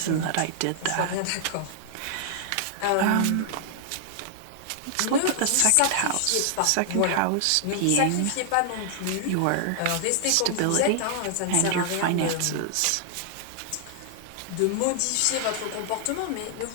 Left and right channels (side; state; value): both; different; correlation -0.01